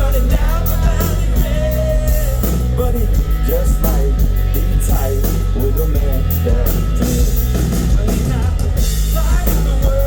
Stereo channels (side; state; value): both; identical; correlation 1.00